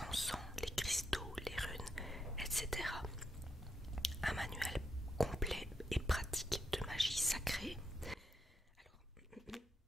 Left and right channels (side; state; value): both; normal; correlation 0.82